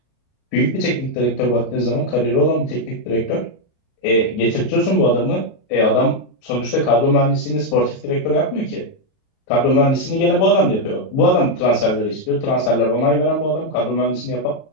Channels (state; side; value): late; right; 38 ms